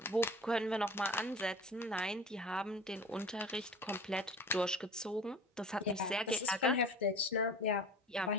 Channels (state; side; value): normal; both; correlation 0.40